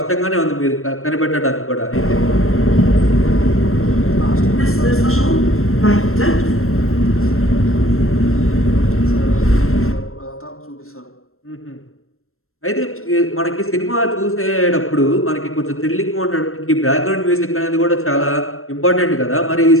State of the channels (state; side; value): late; right; 0.62 ms